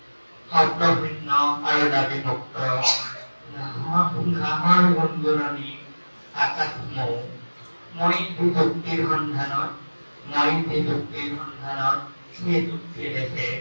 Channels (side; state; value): both; inverted; correlation -1.00